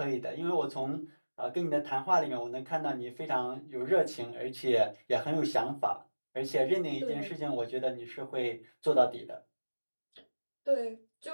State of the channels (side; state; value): both; inverted; correlation -1.00